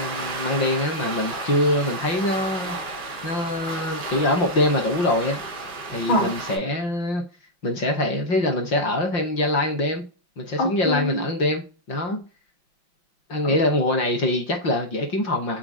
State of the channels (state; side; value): late; right; 5.7 ms